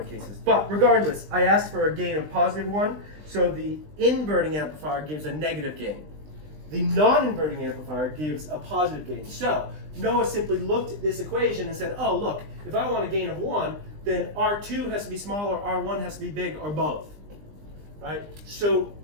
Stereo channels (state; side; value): late; left; 20 ms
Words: of cases. But regardless, I asked for a gain of +1, so the inverting amplifier gives a negative gain. The non-inverting amplifier gives a positive gain. So Noah simply looked at this equation and said, oh look, if I want a gain of 1, then R2 has to be small or R1 has to be big or both. Right? So